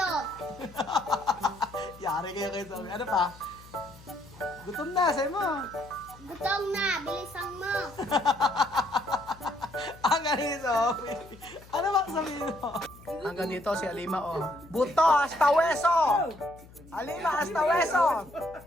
Yari kayo kayo sabi. Ano pa? Gutom na, sabi mo. Gutom na, bilisan mo! Ang ganito, Sophie. Ano ba sabihin mo? Ang ganito si Alima, oh. Buto, hasta hueso! Alima, hasta hueso!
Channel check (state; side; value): noise; left; hum, 22 dB below the sound